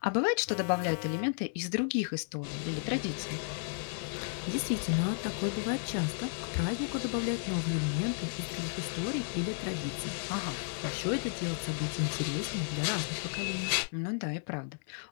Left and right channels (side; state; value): right; silent; 56 dB below the other